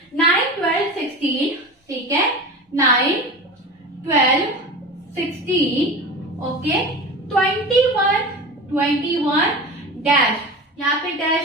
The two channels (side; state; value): both; normal; correlation 0.30